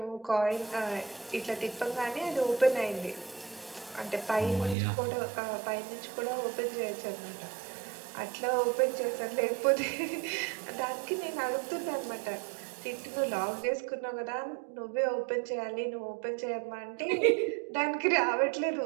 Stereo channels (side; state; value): left; drops out; at 4.8 s